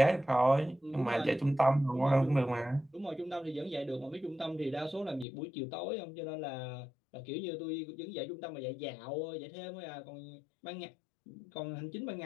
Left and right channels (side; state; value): right; drops out; at 5.2 s